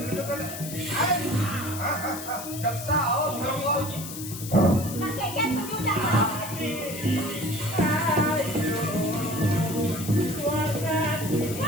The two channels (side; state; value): left; noise; hiss, 10 dB below the sound